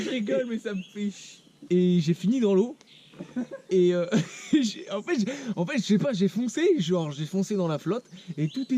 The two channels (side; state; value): both; identical; correlation 1.00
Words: rigole, mais ça me fait chier. Et j'ai fini dans l'eau. Et en fait, je sais pas, j'ai foncé dans la flotte et tout